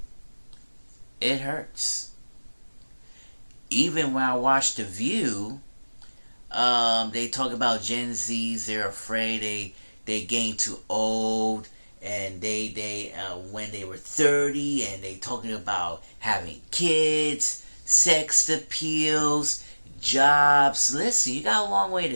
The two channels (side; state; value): both; inverted; correlation -1.00